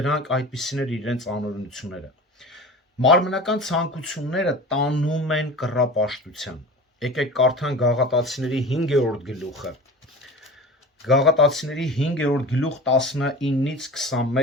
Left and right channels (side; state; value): both; normal; correlation 0.35